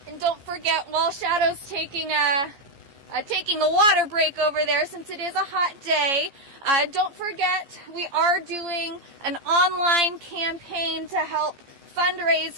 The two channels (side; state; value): left; late; 15 ms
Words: And don't forget, while Shadow's taking a water break over there, since it is a hot day, don't forget we are doing an online campaign to help fundraise